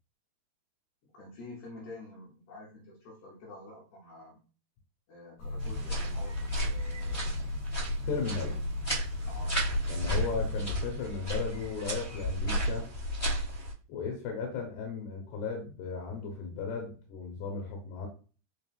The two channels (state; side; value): late; right; 13 ms